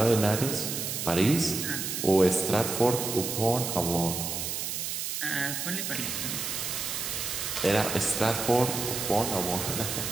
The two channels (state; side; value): noise; right; hiss, 3 dB below the sound